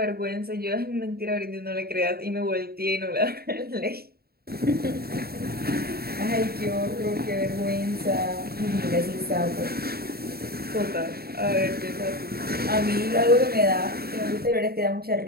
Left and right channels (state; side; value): late; left; 0.45 ms